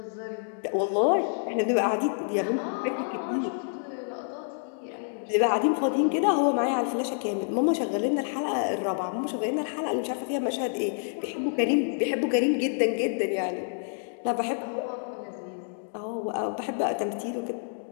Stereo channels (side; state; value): right; silent; digital silence